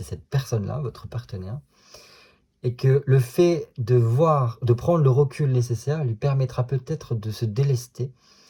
cette personne-là, votre partenaire. Et que le fait de prendre le recul nécessaire lui permettra peut-être de se délester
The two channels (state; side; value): identical; both; correlation 1.00